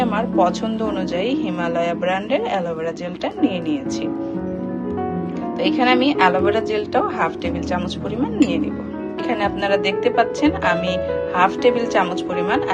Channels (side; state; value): both; identical; correlation 1.00